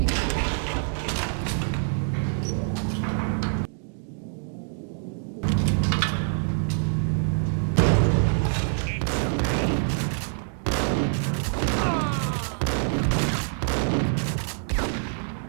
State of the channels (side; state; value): left; silent; digital silence